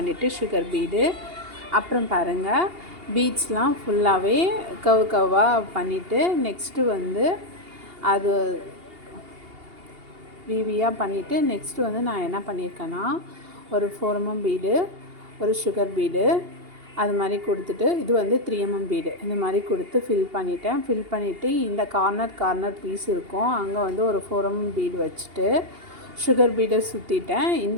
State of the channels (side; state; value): left; late; 2.8 ms